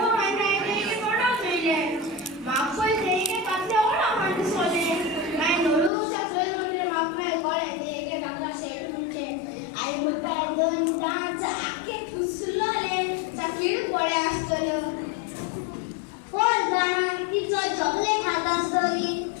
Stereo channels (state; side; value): drops out; right; at 5.9 s